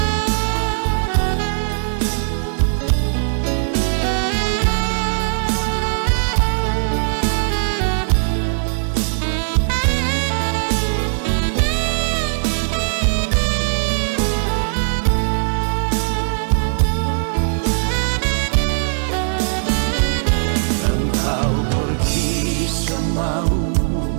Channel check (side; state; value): left; silent; digital silence